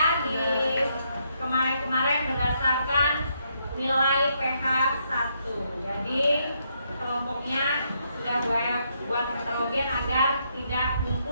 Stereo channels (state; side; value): inverted; both; correlation -0.76